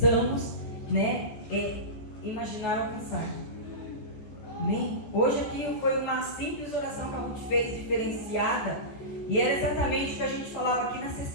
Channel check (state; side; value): late; right; 14 ms